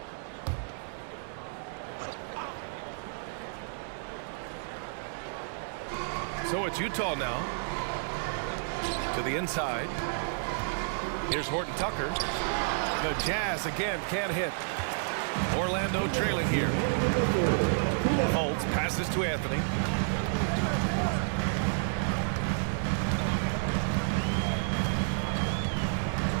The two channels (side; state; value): left; silent; 57 dB below the other